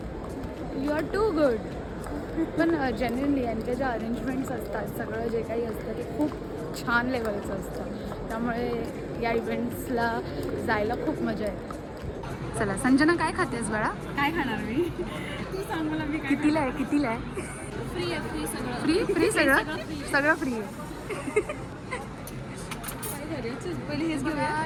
you are too good. पण जेन्युनली यांचे जे अरेंजमेंट्स असतात, सगळं जे काही असतं ते खूप छान लेवलचं असतं. त्यामुळे या इव्हेंट्सला जायला खूप मजा येते. चला संजना, काय खातेस बाळा? काय खाणार मी? तू सांग मला मी कितीला आहे? कितीला आहे? फ्री आहे, फ्री सगळं. फ्री सगळं सगळं फ्री आहे. काय करायचं? पहिले हेच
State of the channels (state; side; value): identical; both; correlation 1.00